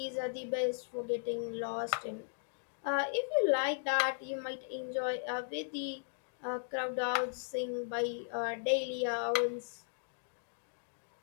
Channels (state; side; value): silent; right; digital silence